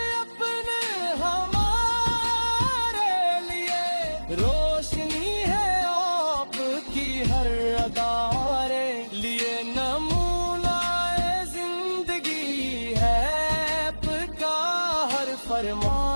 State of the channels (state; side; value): inverted; both; correlation -1.00